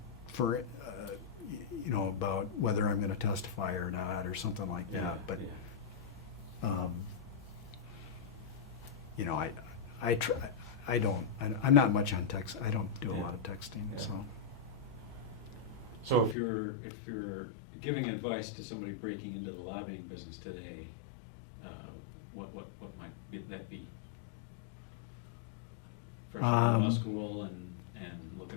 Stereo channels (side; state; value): right; drops out; at 16.4 s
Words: for, about whether I'm going to testify or not or something like that. But, I'm not much on text. I don't do a lot of texting, Yeah. so. So if you're giving advice to somebody breaking into the lobbying business today, what might that be? Fresh out of law school and